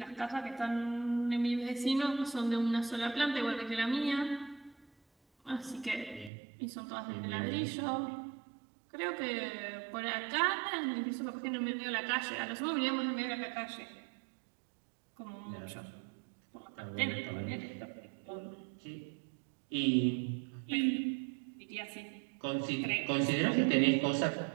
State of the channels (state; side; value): drops out; left; at 6.3 s